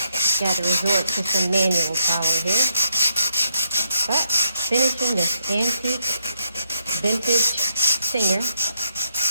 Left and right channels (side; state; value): both; inverted; correlation -0.78